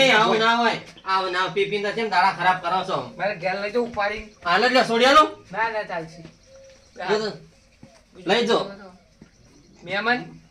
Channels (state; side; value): identical; both; correlation 1.00